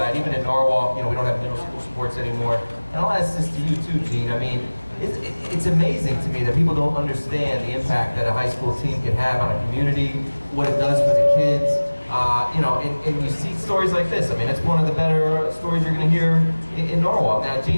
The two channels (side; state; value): both; inverted; correlation -1.00